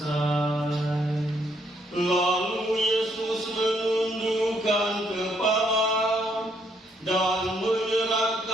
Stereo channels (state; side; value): normal; both; correlation 0.72